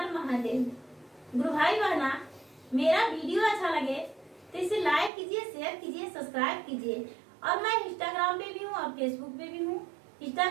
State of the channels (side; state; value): left; drops out; at 5.1 s